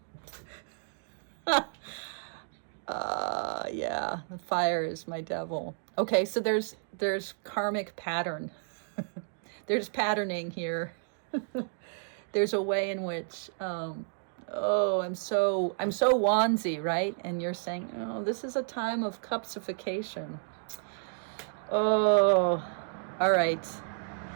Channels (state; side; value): silent; left; digital silence